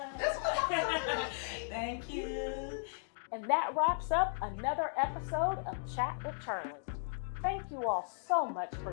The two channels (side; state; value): right; silent; digital silence